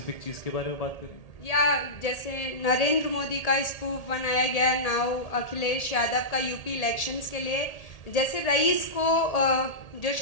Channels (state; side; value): late; right; 1.8 ms